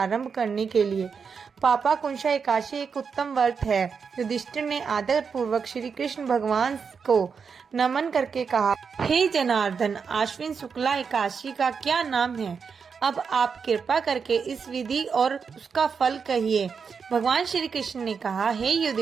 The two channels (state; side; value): quieter; left; 5.9 dB